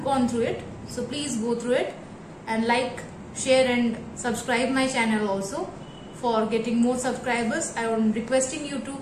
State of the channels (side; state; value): both; identical; correlation 1.00